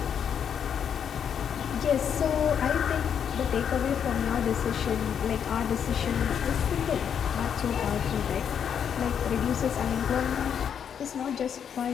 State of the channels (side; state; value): right; quieter; 8.0 dB